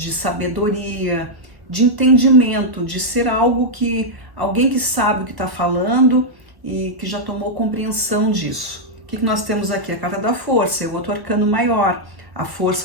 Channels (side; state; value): left; late; 1.1 ms